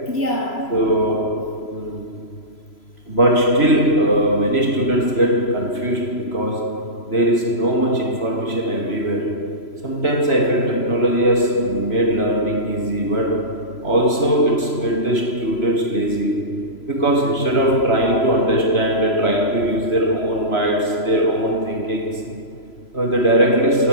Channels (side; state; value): right; late; 3.0 ms